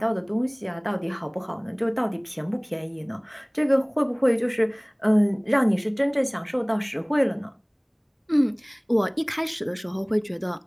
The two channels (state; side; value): identical; both; correlation 1.00